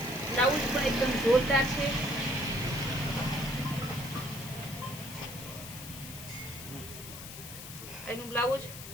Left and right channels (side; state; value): left; noise; hiss, 12 dB below the sound